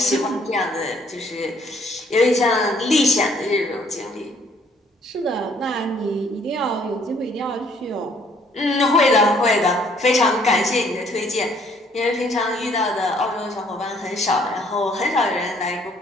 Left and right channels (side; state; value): both; normal; correlation 0.63